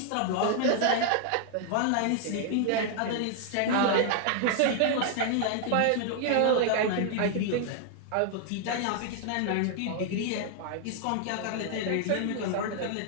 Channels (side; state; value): both; different; correlation 0.00